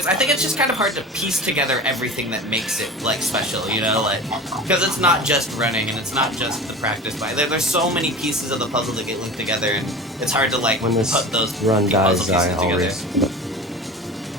I think it's just kind of hard to piece together everything that makes it like special, you know, like because it's not just running and it's not just the practice by there's so many pieces of the puzzle that get linked together and it's hard to like when this put those run dies, puzzle pieces I'll together. raise.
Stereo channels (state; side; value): normal; both; correlation 0.34